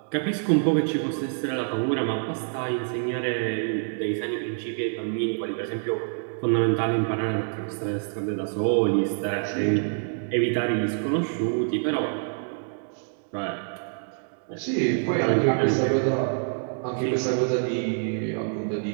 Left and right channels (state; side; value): silent; left; 59 dB below the other